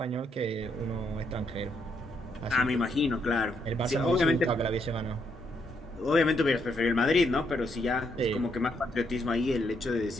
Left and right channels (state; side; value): normal; both; correlation 0.75